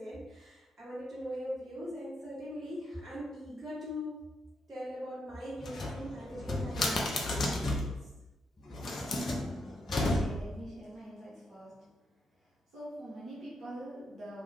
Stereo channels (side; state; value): both; normal; correlation 0.80